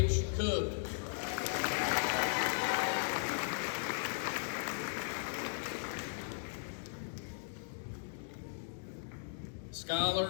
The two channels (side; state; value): right; silent; digital silence